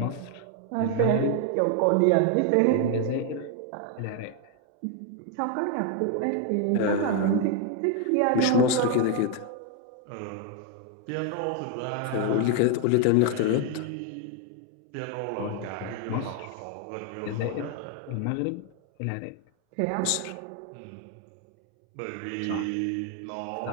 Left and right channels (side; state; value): both; different; correlation 0.01